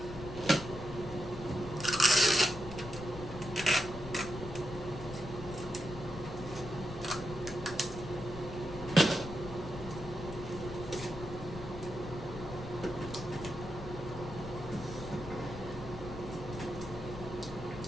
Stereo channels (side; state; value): left; noise; rumble, 10 dB below the sound